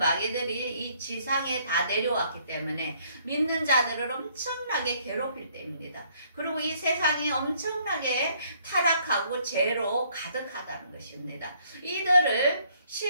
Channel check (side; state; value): both; inverted; correlation -0.66